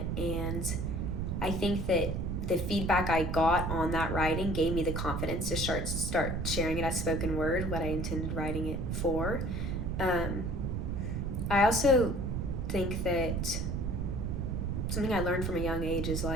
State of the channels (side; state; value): right; noise; rumble, 1 dB below the sound